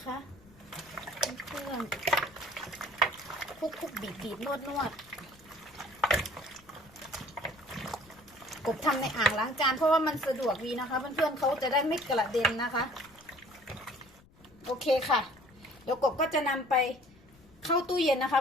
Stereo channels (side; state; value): left; noise; rumble, 27 dB below the sound